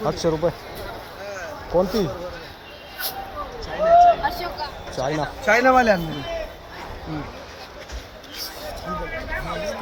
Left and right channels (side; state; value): both; identical; correlation 1.00